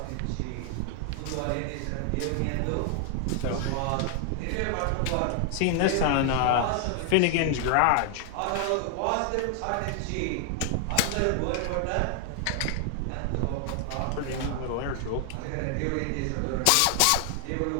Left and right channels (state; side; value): different; both; correlation 0.00